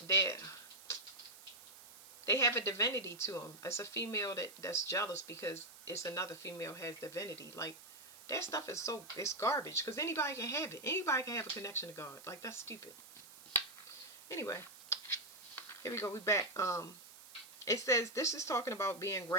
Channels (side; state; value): right; noise; hiss, 18 dB below the sound